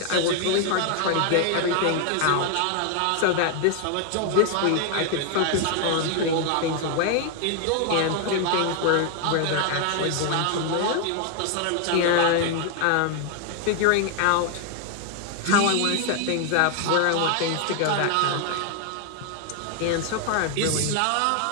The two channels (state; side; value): different; both; correlation 0.00